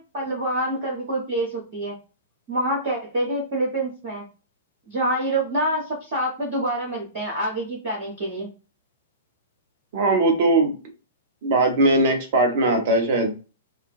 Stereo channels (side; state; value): both; inverted; correlation -0.32